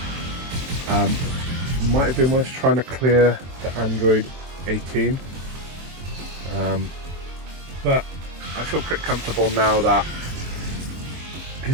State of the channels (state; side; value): late; left; 23 ms